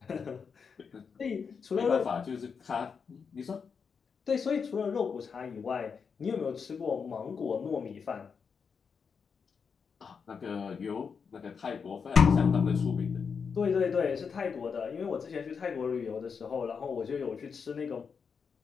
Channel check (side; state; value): right; quieter; 6.0 dB